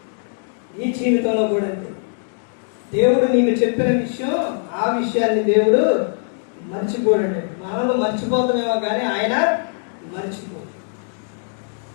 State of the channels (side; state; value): right; silent; 65 dB below the other